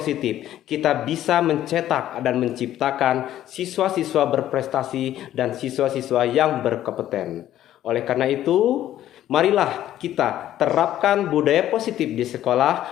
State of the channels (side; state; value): right; quieter; 12.5 dB